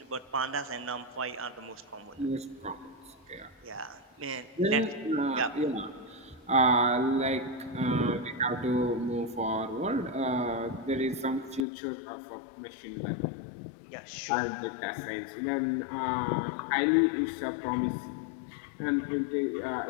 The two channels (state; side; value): drops out; right; at 11.7 s